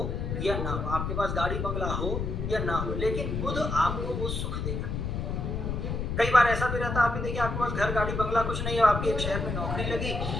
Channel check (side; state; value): left; noise; rumble, 2 dB below the sound